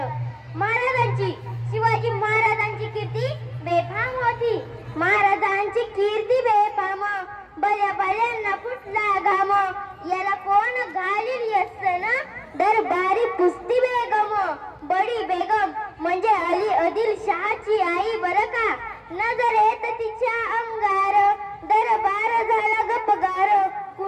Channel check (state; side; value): identical; both; correlation 1.00